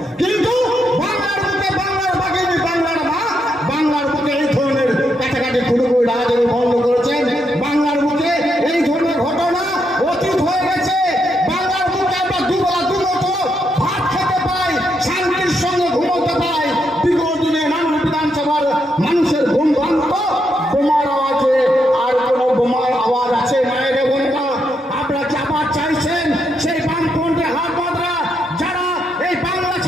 কিন্তু বাংলার বুকে বাংলার বাগিনী, বাংলার মা, বাংলার বুকে এই ধরনের কাটাকাটি খুঁড়ি রাজাদের বন্ধ করেছেন। বাংলার বুকে এই ধরনের ঘটনা অতীত হয়ে গেছে। বাংলার বুকে আমরা দুবেলা দুমতো ভাত খেতে পাই, শান্তির সঙ্গে ঘুমোতে পাই। বিগত দিনে নানান বিধানসভার মানুষের ঘুম ভাঙত বোমার আওয়াজে। আর কোনো বোমার আওয়াজ আছে মায়ের বোনেরা? আপনারা কি আবার চাইছেন সেই বামপন্থী হাত বাঁধরা যারা এই বাংলা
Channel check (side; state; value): both; normal; correlation 0.80